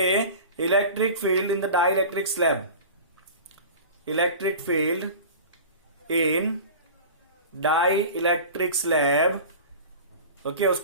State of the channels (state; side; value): inverted; both; correlation -0.36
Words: electric field in the dielectric slab, electric field in dielectric slab, okay,